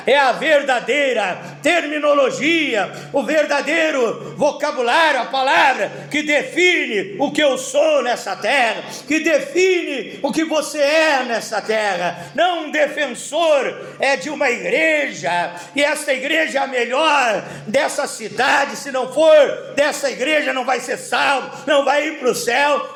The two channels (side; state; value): both; identical; correlation 1.00